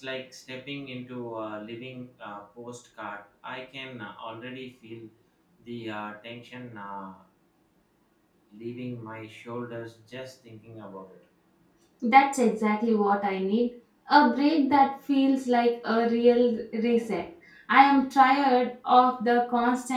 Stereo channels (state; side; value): identical; both; correlation 1.00